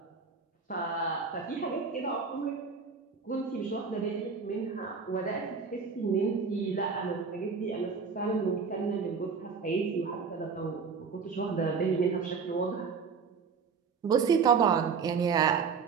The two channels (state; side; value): quieter; left; 5.5 dB